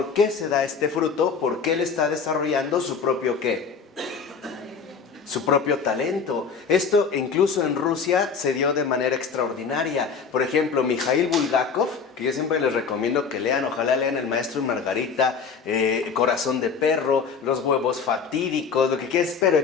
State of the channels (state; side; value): quieter; right; 5.7 dB